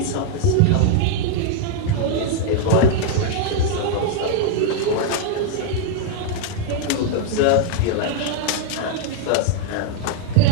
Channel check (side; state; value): both; different; correlation 0.00